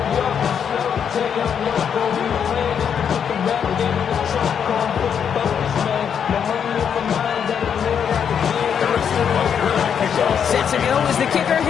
Set to go is the kicker,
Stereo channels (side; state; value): right; quieter; 7.8 dB